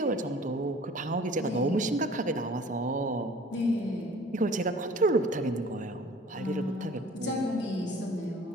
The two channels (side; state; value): both; normal; correlation 0.49